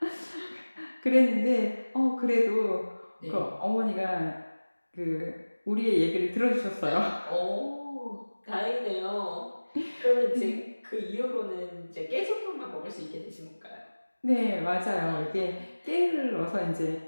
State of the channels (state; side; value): inverted; both; correlation -1.00